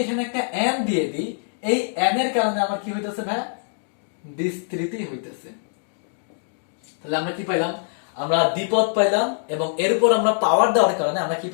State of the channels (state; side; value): silent; right; digital silence